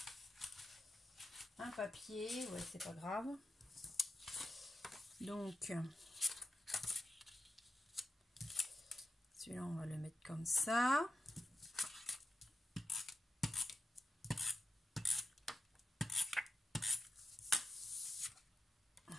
un papier. Ouais, c'est pas grave. Donc, celui-là, on va le mettre comme ça.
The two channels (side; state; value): both; normal; correlation 0.91